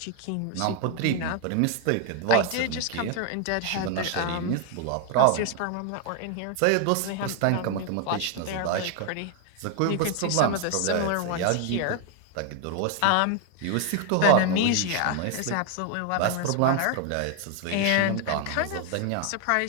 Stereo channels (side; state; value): both; different; correlation 0.00